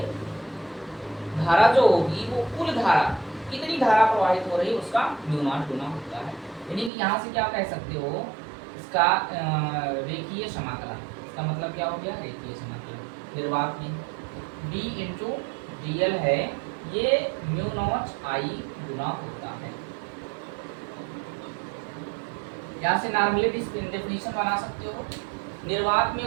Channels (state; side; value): drops out; left; at 6.9 s